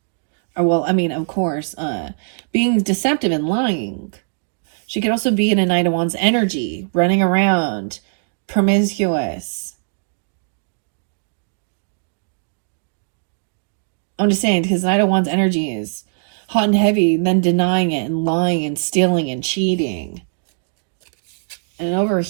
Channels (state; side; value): silent; left; digital silence